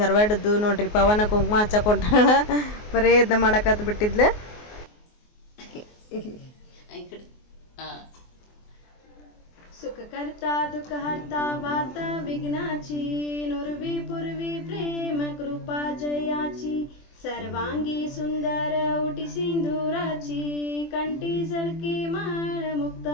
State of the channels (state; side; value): late; right; 24 ms